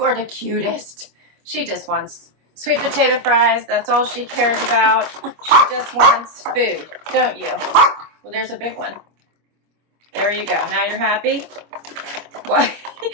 are the cutest. She just wants sweet potato fries. That's all she cares about. She just wants food, don't you? Well, there's a big one. There you go. Now you're happy?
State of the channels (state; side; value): late; left; 25 ms